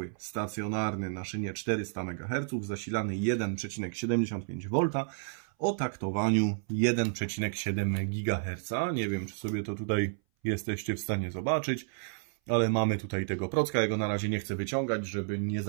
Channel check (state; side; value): silent; left; 57 dB below the other